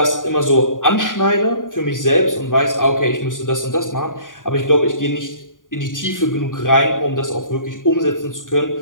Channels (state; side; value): late; right; 0.89 ms